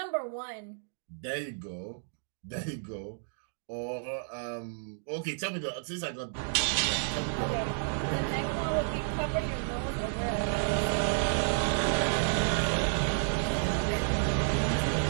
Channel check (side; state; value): left; silent; digital silence